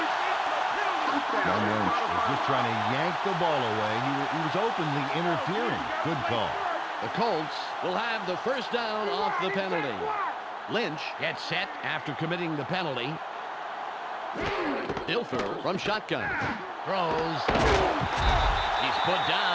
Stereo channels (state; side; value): identical; both; correlation 1.00